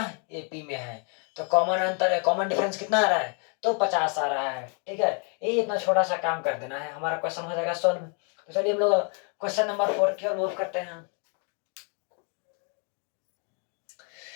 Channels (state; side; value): quieter; right; 38.9 dB